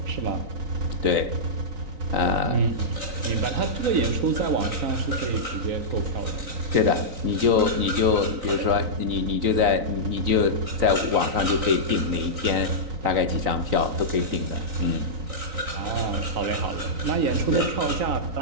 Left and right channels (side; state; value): left; late; 3.9 ms